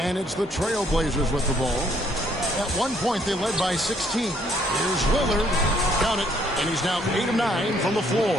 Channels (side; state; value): both; normal; correlation 0.66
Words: it's the Trailblazers with the ball. At one point, they led by 16. Here's Lillard. Count it. And he's now 8 of 9 from the